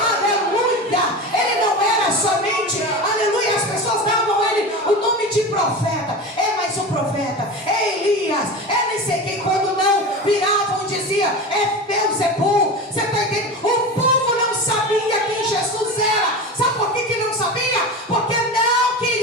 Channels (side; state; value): both; normal; correlation 0.27